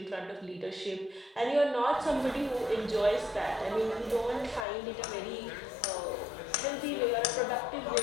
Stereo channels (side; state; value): right; drops out; at 4.7 s